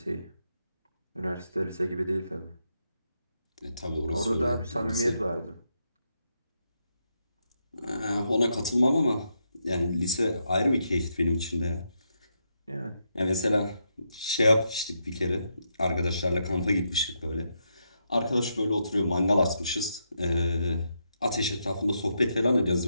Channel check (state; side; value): inverted; both; correlation -0.82